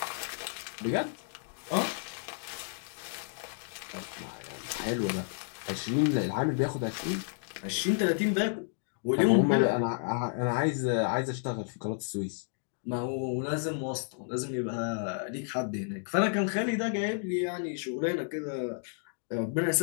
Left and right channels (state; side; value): silent; right; digital silence